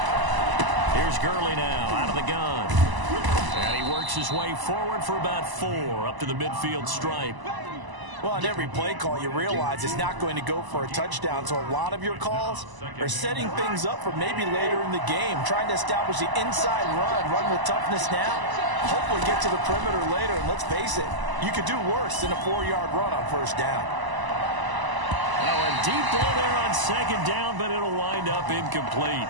Here's Gurley now, out of the gun. And he works his way forward for about 4 up to the midfield stripe. Well, on every play call, you realize it's not going to go for a touchdown. So a lot of your calls are setting things up for maybe later in the game, trying to establish the inside run with toughness now, hopefully get to the perimeter later. And let's face it, you could do worse than a 4-yard run on 1st down. Now a deep ball there on 2nd down, but it'll wind up incomplete.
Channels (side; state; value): left; late; 1.0 ms